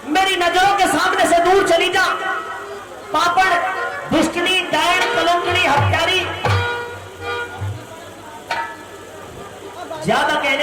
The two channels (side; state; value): both; identical; correlation 1.00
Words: मेरी नजरों के सामने से दूर चली जा। पापड़, दुष्टनी, डायन, कलंकनी, हत्यारी। ज्यादा